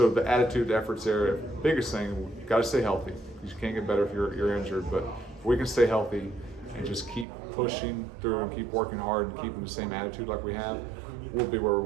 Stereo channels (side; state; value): left; drops out; at 7.2 s